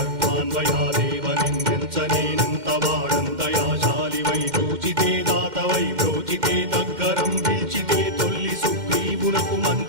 నిందించనేనంత వాడంతయాశాలివై చూచితే దాతవై బ్రోచితే దగ్గరం పిలిచితే తొల్లి సుగ్రీవునకు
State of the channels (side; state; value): left; late; 2.1 ms